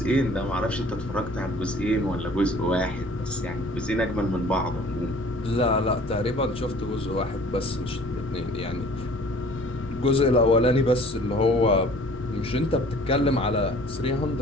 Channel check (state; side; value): normal; both; correlation 0.50